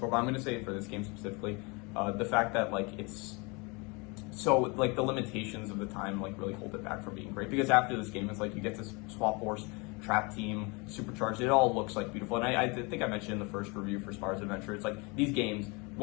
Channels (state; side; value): quieter; right; 28.7 dB